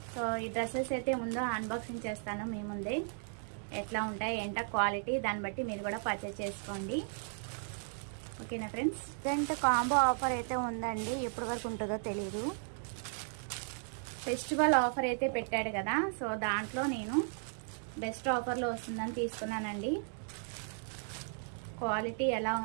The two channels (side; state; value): left; silent; 54 dB below the other